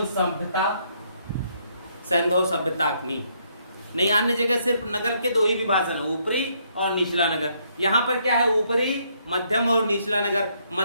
सभ्यता सैंधव सभ्यता की। नहीं, अन्य जगह सिर्फ नगर के 2 ही विभाजन है, ऊपरी और निचला नगर। यहाँ पर क्या है? ऊपरी, मध्यम और निचला नगर।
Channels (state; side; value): inverted; both; correlation -0.71